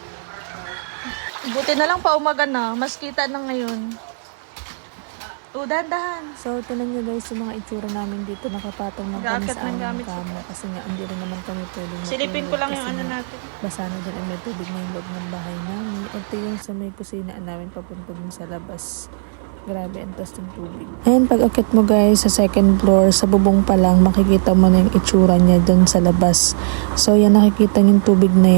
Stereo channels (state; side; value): silent; left; 60 dB below the other